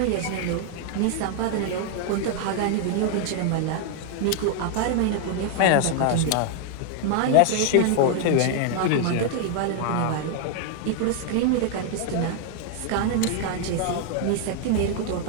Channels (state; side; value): different; both; correlation 0.00